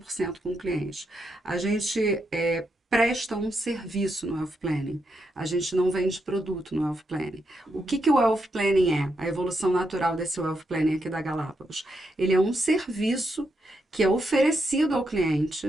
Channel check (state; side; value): normal; both; correlation 0.82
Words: com o cliente. A gente presta um serviço no Wealth Planning. A gente não vende produto no Wealth Planning. O que que o Wealth Planning é? A evolução natural desse Wealth Planning aqui da Galápagos. Ele é um serviço que é oferecido ao